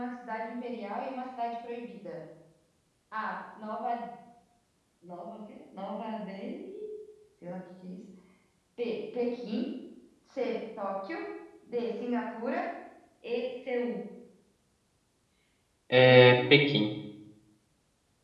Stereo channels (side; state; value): both; identical; correlation 1.00